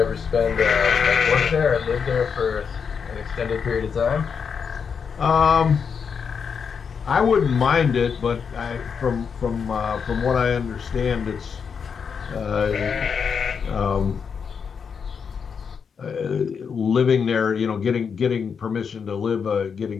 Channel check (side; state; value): right; quieter; 6.4 dB